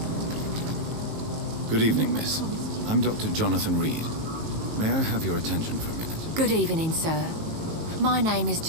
Good evening, miss. I'm Dr. Jonathan Reed. May I have your attention for a minute? Good evening, sir. My name is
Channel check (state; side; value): late; left; 19 ms